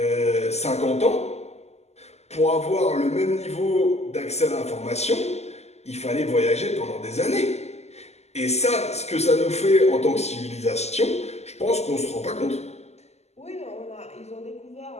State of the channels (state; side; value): late; right; 0.32 ms